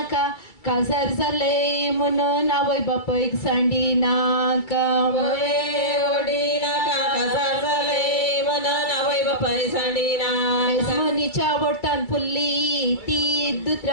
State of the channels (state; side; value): late; right; 2.3 ms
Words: काजार जाले म्हणून आवय बापयक सांडी नाका ओडी नाका काजार जाले म्हणून आवय बापाय सांडी ना मनीच्या वटान फुल्ली ती